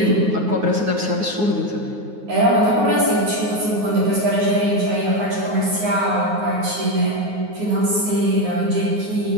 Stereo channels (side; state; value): left; late; 9.5 ms